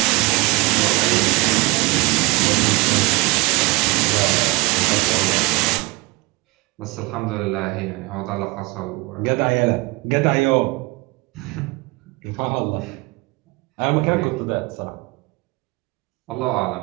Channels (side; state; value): left; quieter; 24.0 dB